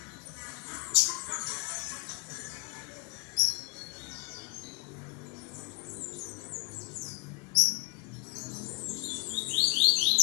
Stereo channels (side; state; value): right; quieter; 34.7 dB